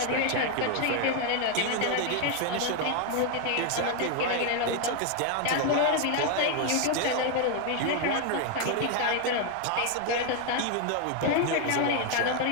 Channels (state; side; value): different; both; correlation 0.01